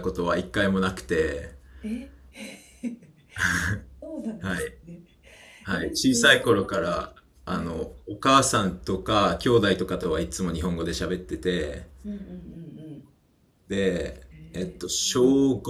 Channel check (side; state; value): both; identical; correlation 1.00